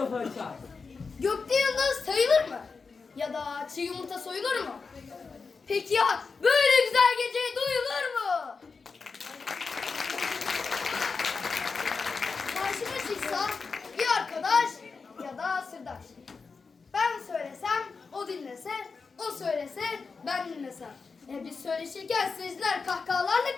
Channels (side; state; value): right; quieter; 4.8 dB